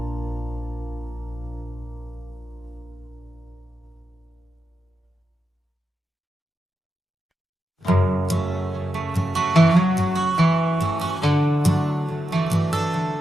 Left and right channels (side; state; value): both; normal; correlation 0.88